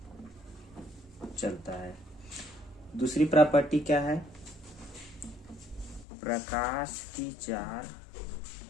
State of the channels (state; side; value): drops out; right; at 6.1 s